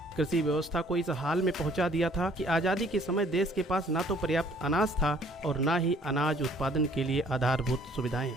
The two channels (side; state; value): both; normal; correlation 0.59